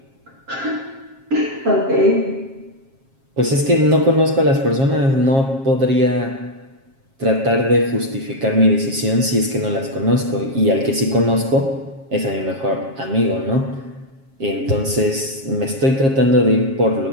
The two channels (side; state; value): left; late; 7.4 ms